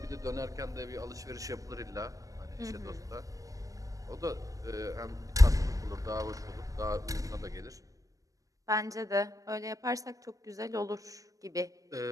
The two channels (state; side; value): late; left; 0.16 ms